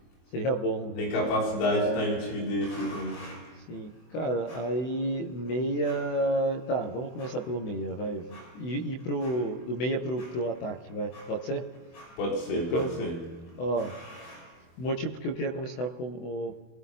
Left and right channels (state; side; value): late; right; 24 ms